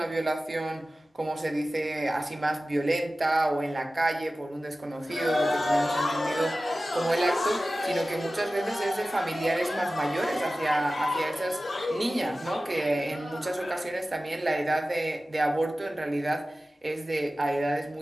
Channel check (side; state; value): both; normal; correlation 0.96